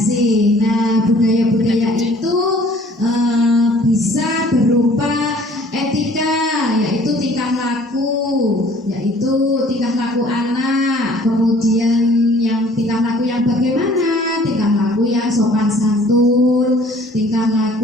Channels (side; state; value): both; normal; correlation 0.54